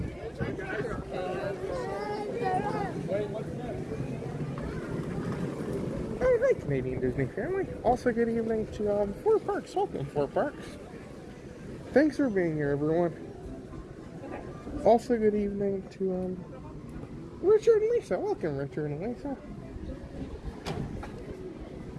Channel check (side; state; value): both; identical; correlation 1.00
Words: Oh, hi, Canadian Disney family. Also, good evening to Four Parks. Welcome, Four Parks. Thanks for being here, everyone. Also, good evening to Richard and Lisa. Welcome, Richard and Lisa.